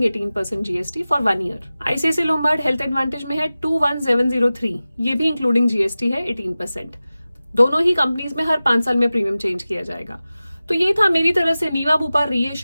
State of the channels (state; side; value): inverted; both; correlation -0.96